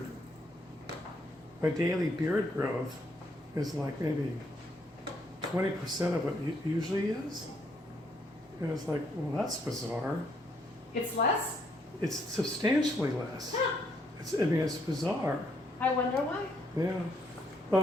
my daily beard growth is like maybe 20% of what it usually is. And it's like, well, that's bizarre. It's less. It's substantially less. I mean, it's bizarre. I wonder why. Yeah.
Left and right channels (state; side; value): normal; both; correlation 0.71